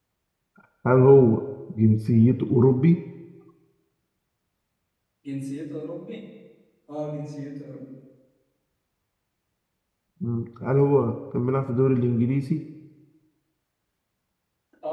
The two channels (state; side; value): identical; both; correlation 1.00